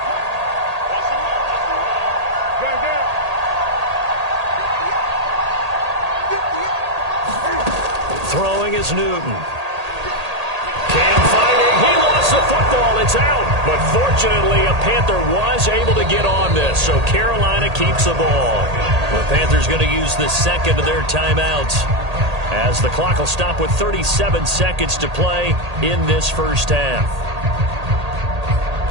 Throwing is Newton. Cam fighting. He lost the football. It's out. But fortunately, a Panther was able to get on this. So Carolina keeps the ball. The Panthers going to use the second of their timeouts as the clock will stop with 37 seconds to play in this first half.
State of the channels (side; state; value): left; late; 1.8 ms